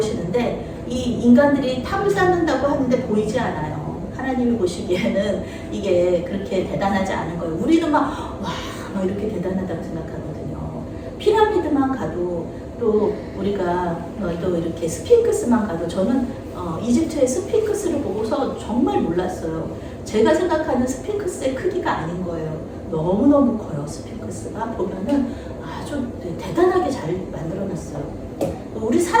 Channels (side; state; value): both; identical; correlation 1.00